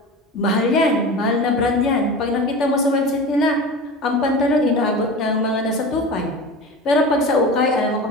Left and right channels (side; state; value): both; normal; correlation 0.31